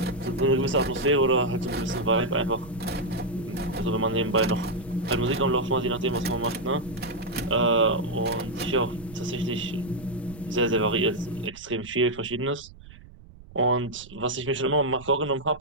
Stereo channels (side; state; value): right; noise; rumble, 20 dB below the sound